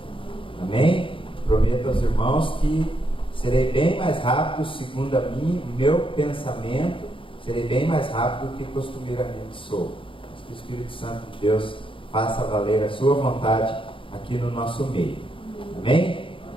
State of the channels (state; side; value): late; right; 0.25 ms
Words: Amém? Prometo aos irmãos que serei bem mais rápido, segundo o meu pensamento, serei bem mais rápido do que costumeiramente sou. Mas que o Espírito Santo de Deus faça valer a sua vontade aqui no nosso meio. Amém?